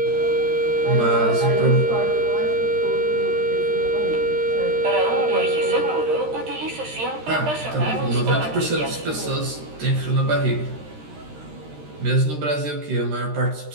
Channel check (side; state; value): left; late; 13 ms